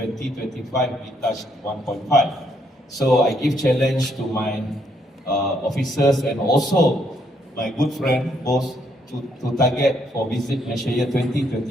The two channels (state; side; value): normal; both; correlation 0.72